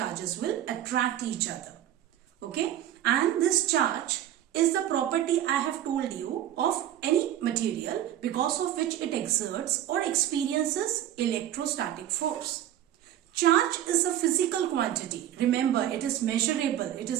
will attract each other. Okay, and this charge is the property I have told you of any material because of which it exerts or experiences electrostatic force. Charge is a physical quantity. Remember, it is measurable. It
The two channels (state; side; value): quieter; left; 11.8 dB